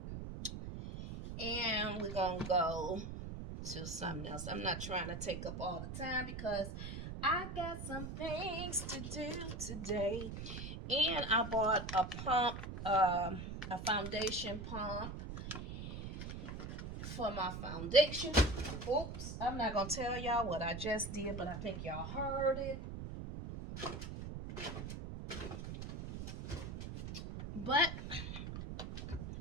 And we're going to go to something else. I'm not trying to take up all the time because I got some things to do today. And I bought a pump, a foundation pump for my foundation. Oops, I'm not going to tell y'all what I just did, but I think y'all heard it.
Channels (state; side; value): noise; right; rumble, 7 dB below the sound